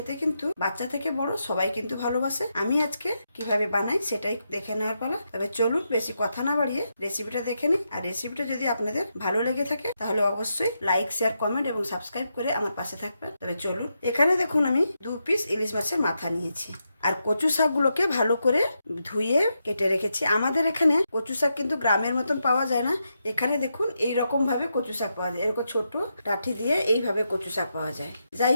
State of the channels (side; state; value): both; inverted; correlation -0.84